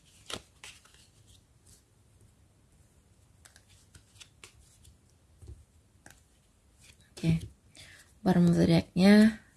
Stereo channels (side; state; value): both; identical; correlation 1.00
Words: Oke. Bottom of the deck-nya